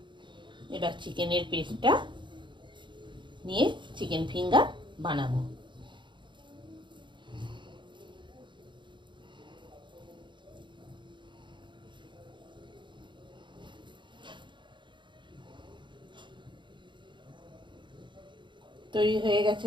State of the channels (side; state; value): left; late; 0.23 ms